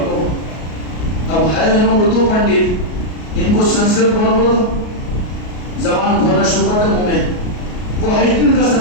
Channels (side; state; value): right; late; 33 ms